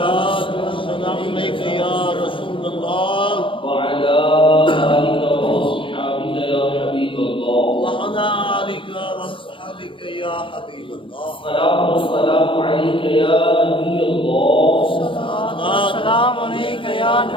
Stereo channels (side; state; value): right; late; 0.25 ms